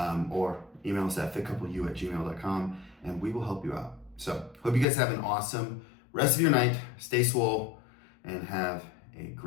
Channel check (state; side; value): drops out; right; at 4.9 s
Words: or email us at fitcoupleu@gmail.com, and we will help you out. So, hope you guys have an awesome rest of your night. Stay swole and have a